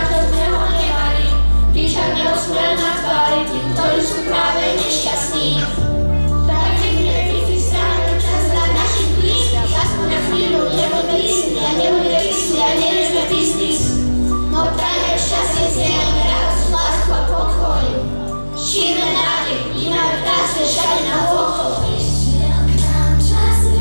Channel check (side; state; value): both; inverted; correlation -1.00